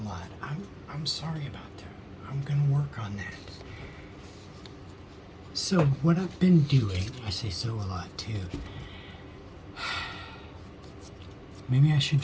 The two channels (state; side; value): identical; both; correlation 1.00